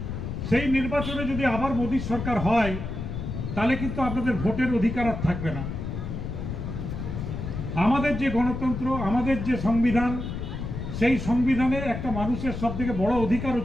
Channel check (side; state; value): left; noise; rumble, 5 dB below the sound